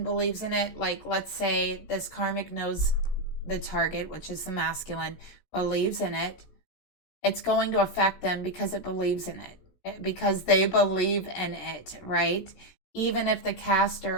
believes in it, like let's say this karmic knows the target, which is the masculine, believes in it, it's going to affect them because it believes in it, because they believe in it, right? Even if the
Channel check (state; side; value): late; right; 16 ms